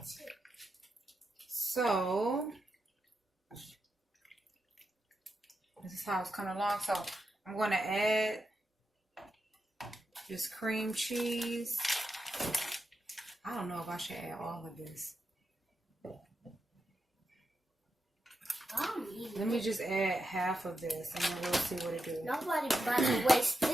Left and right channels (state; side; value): normal; both; correlation 0.87